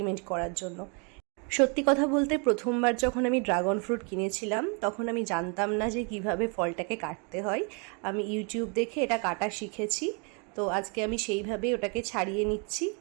করার জন্য। সত্যি কথা বলতে প্রথমবার যখন আমি ড্রাগন ফ্রুট কিনেছিলাম তখন আমি জানতাম না যে কিভাবে ফলটাকে কাটতে হয়। আমি ইউটিউব দেখে এটা কাটা শিখেছি। তো আজকে আমি সেইভাবেই ওটাকে ছাড়িয়ে নিচ্ছি।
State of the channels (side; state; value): left; quieter; 35.6 dB